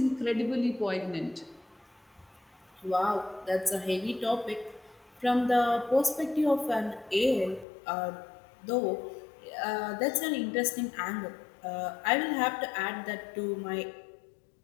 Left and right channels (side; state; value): right; drops out; at 7.7 s